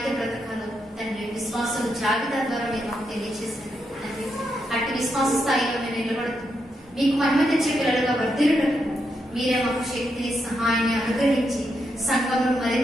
బ్రతకాలో తండ్రి విశ్వాసులు జాబితా ద్వారా మీరు మాకు తెలియజేశారు తండ్రి. అట్టి విశ్వాస స్థాయిలో మేము నిలబడుతూ మీకు మహిమ తెచ్చే పిల్లలుగా వర్ధిల్లుటకు మీరే మాకు శక్తిని సహాయాన్ని అనుగ్రహించి సంఘంలో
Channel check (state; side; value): normal; both; correlation 0.82